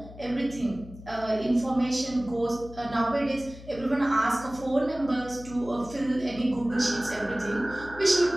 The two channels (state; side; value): noise; left; hum, 16 dB below the sound